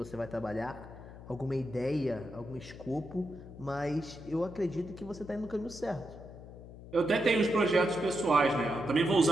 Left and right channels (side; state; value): left; noise; hum, 15 dB below the sound